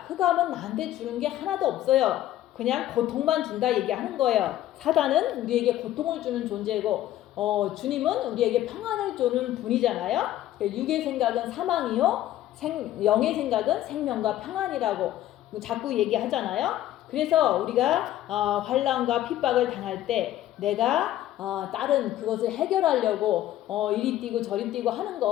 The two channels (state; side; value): quieter; right; 13.4 dB